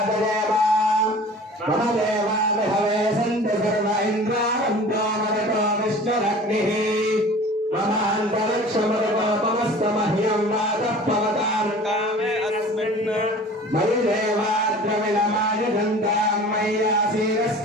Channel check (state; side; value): normal; both; correlation 0.43